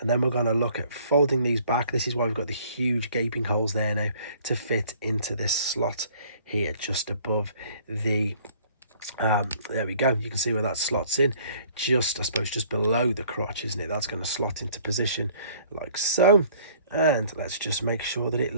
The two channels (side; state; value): both; inverted; correlation -0.56